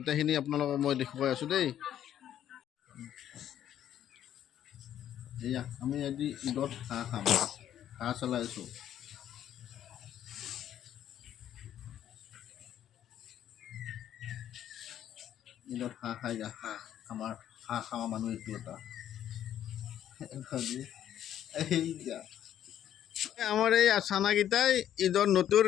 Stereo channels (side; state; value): right; quieter; 10.8 dB